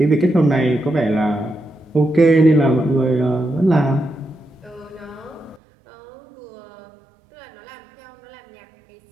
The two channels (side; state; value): left; drops out; at 5.6 s